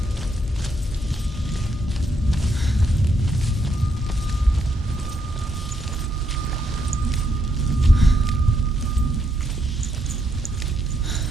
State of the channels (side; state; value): both; normal; correlation 0.77